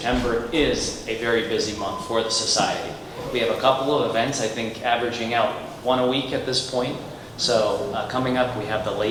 is a very busy month for the Society. We have a couple of events, I think averaging out one a week at this point. So coming up, we have the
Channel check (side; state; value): both; identical; correlation 1.00